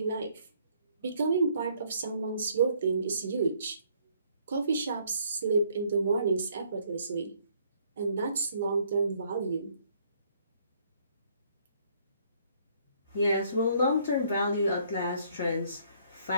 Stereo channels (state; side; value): inverted; both; correlation -0.65